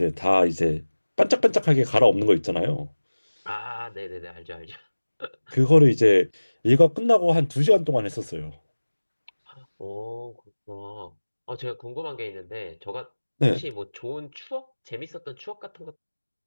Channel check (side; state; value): both; inverted; correlation -1.00